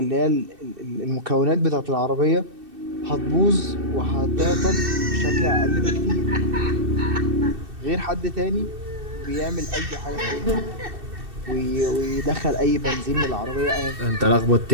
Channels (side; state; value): left; late; 2.7 ms